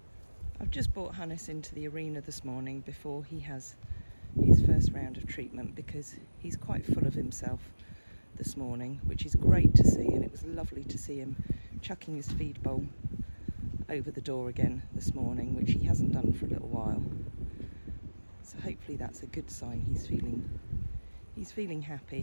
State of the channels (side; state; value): both; inverted; correlation -1.00